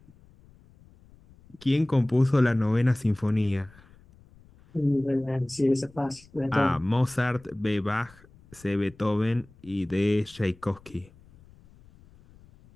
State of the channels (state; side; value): noise; left; rumble, 26 dB below the sound